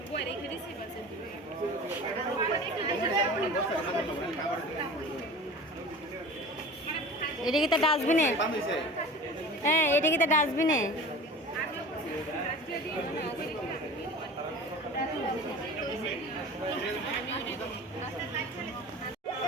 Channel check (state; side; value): normal; both; correlation 0.38